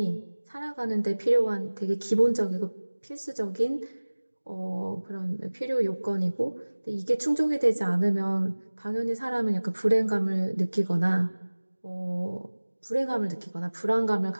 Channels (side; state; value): both; inverted; correlation -1.00